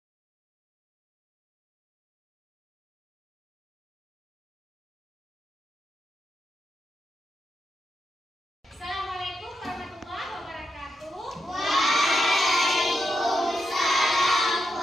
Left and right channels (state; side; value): normal; both; correlation 0.84